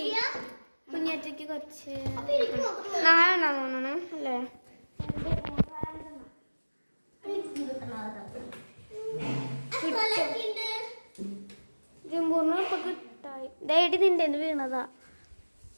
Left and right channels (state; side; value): inverted; both; correlation -1.00